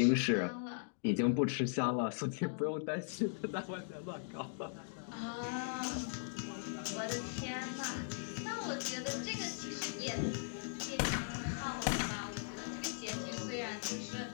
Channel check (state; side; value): silent; right; digital silence